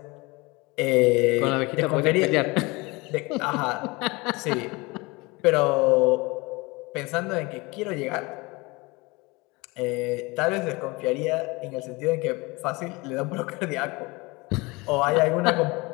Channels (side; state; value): right; quieter; 24.7 dB